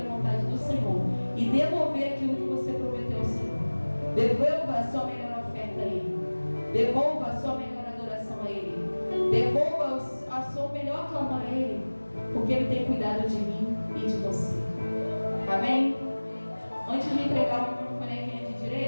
da vontade do Senhor e devolver aquilo que você prometeu ao Senhor. Devolva a sua melhor oferta a Ele. Devolva a sua melhor adoração a Ele. Devolva a sua melhor clamor a Ele, porque Ele tem cuidado de mim e de você. Amém? Antes de entregar o bonequinho de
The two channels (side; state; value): both; inverted; correlation -1.00